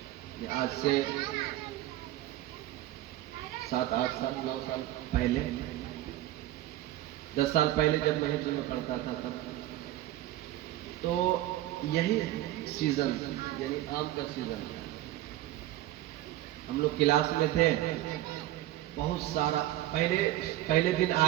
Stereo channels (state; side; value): quieter; left; 14.9 dB